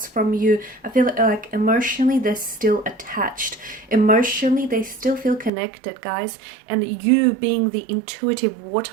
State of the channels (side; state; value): left; drops out; at 5.5 s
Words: from you. I feel like emotionally they're still attached. Emotionally they still feel connected, guys. And you, being the intuitive